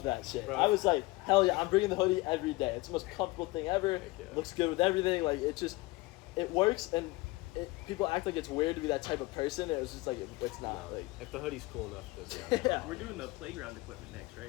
that shit. Bro. I was like, hell yeah, I'm bringing the hoodie every day. It's the most comfortable thing ever. Heck yeah. Looks good with everything. Like it works, and people act like it's weird to be that type of person. It was just like it's not. No, Like if the hoodie's cool enough, it doesn't matter. yeah. We're doing the playground equipment next, right?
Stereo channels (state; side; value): quieter; right; 21.9 dB